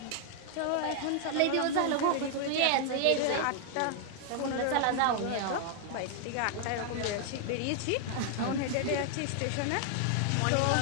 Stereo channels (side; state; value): both; different; correlation 0.00